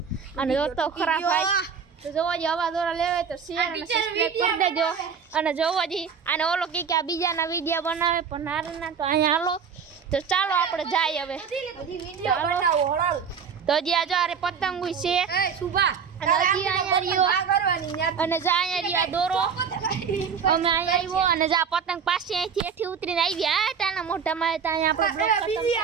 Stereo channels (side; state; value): left; quieter; 6.6 dB